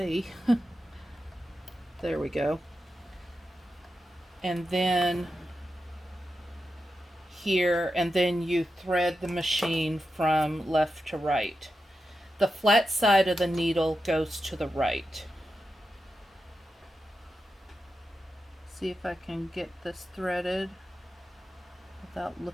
There we go. And then here, and then you thread the machine from left to right. The flat side of the needle goes to the right. See if I can get this threaded without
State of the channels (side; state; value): both; normal; correlation 0.89